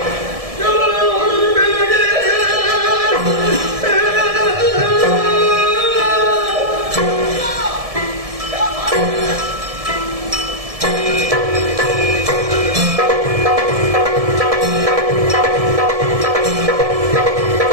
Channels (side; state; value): left; late; 1.7 ms